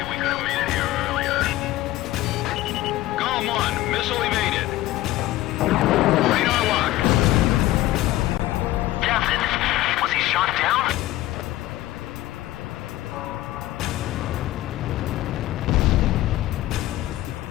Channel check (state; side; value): quieter; right; 15.9 dB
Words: we could have made it here earlier. GOM 1, missile evaded. Radar lock. Captain, was he shot down?